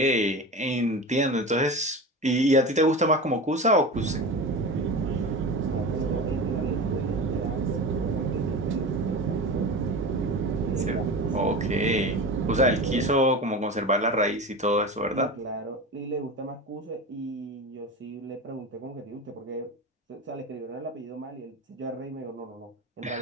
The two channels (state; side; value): normal; both; correlation 0.29